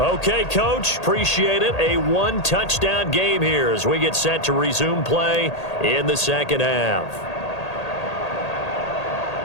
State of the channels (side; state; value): right; late; 1.8 ms